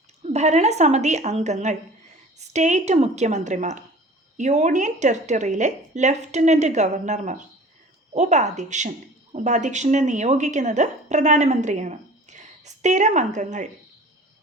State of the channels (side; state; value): both; normal; correlation 0.44